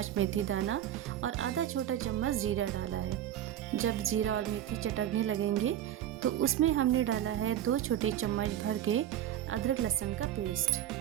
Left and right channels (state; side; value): quieter; left; 11.4 dB